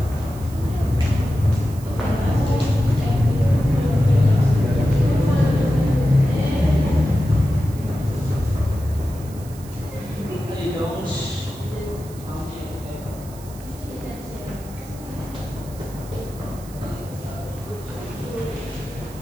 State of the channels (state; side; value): noise; right; hiss, 20 dB below the sound